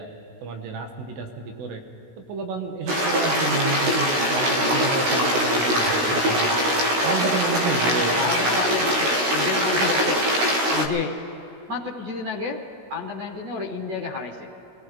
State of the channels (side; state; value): left; late; 16 ms